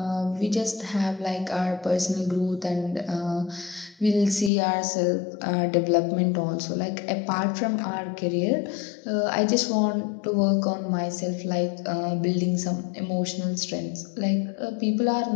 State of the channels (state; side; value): drops out; right; at 4.5 s